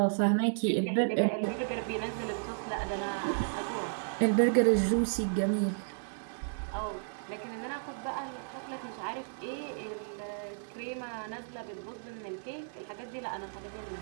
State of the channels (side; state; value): left; silent; 56 dB below the other